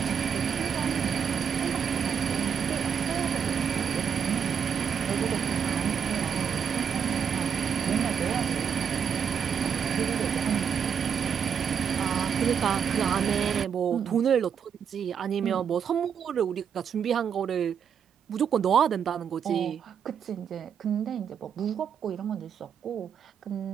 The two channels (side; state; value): left; quieter; 7.4 dB